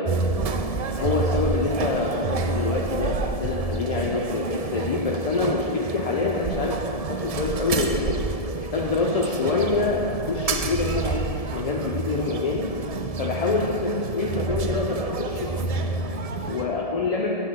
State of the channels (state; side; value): late; right; 1.7 ms